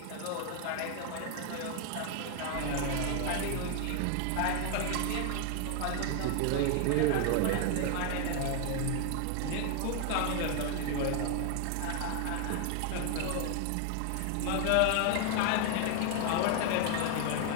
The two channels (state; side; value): different; both; correlation 0.00